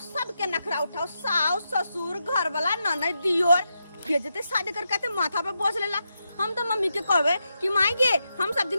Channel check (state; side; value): inverted; both; correlation -0.86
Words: सबके नखरा उठाओ साउस ससुर घर वाला ननद दियोर भेजते शादी करके माथा पे बोझ लेला। हम तो मम्मी के कहबे कि मांगे हम सब